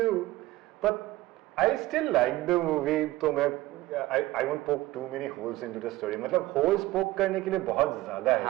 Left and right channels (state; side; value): quieter; left; 17.6 dB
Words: But I still like the movie. तो मैं I won't poke too many holes into the story. मतलब holes poke करने के लिए बहुत ज्यादा है